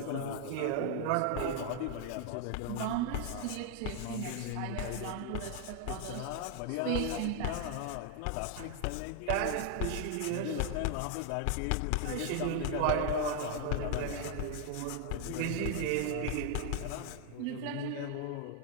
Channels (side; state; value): both; different; correlation 0.00